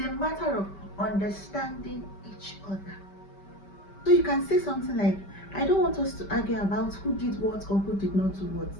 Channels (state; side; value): late; right; 5.2 ms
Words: a matter of understanding each other. So you can say something like, I don't want us to argue about who did what or who did not do what.